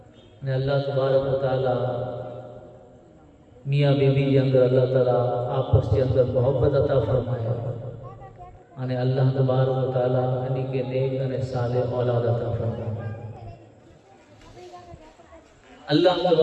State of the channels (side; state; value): both; identical; correlation 1.00